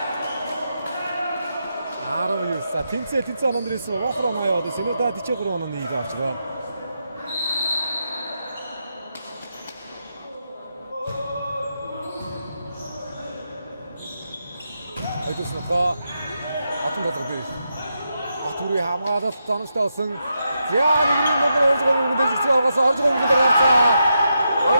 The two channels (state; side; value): inverted; both; correlation -0.84